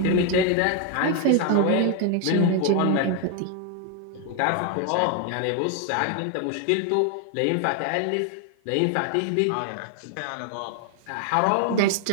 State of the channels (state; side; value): different; both; correlation 0.00